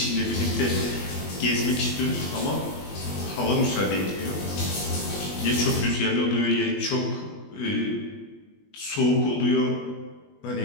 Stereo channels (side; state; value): right; late; 21 ms